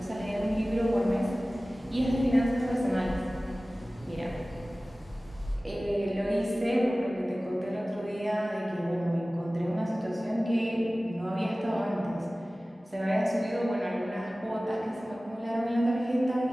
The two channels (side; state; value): both; normal; correlation 0.97